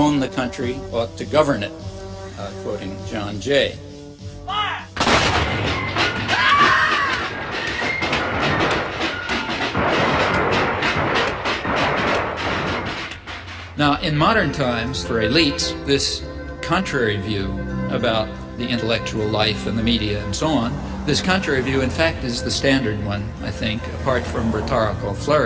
the country ought to govern it, quoting John Jay. Now, in modern times, for elites, this contrary view about the intellectual life and the media and so on, this contrary view, in fact, is the standard one, I think, apart from rhetorical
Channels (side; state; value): both; identical; correlation 1.00